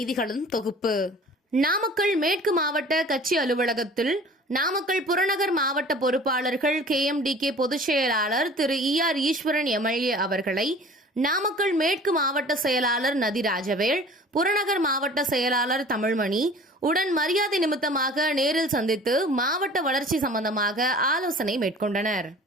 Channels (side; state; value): both; normal; correlation 0.45